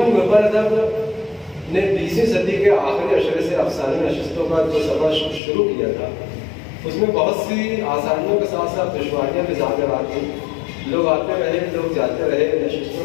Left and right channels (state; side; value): drops out; right; at 5.4 s